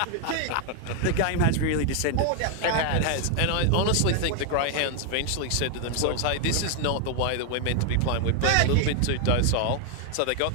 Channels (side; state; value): both; different; correlation 0.00